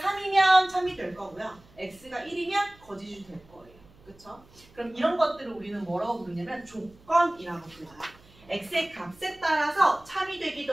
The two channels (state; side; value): noise; right; hum, 27 dB below the sound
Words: 참이 될 거고요. x가 1이면 거짓이 될 거예요. 그쵸? 그럼 이런 것들을 우리는 뭐라고 부르냐면 조건이라고 불러요. x의 값에 따라서 참이